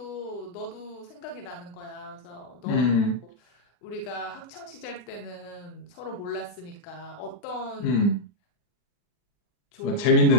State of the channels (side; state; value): right; late; 39 ms